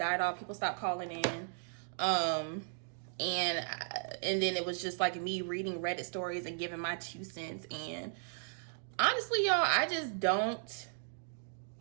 off. People stopped calling in. And then it was just like me reading Reddit stories and giving my 2 cents. And honestly, y'all, I just don't,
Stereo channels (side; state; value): left; silent; digital silence